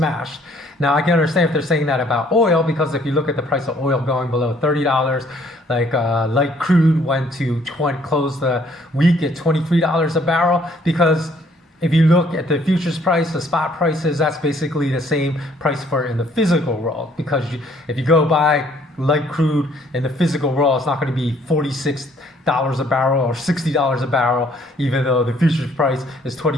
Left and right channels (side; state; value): both; normal; correlation 0.63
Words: Now I can understand if they're saying that about oil, because if you look at the price of oil going below $30, like light crude went to close the week at $23 a barrel, because if you look at the futures price, the spot prices, that's basically the same price for in the physical world. Because if you go buy light crude in the physical world, it's not going to be $46 a barrel or $60 a barrel, even though the futures price is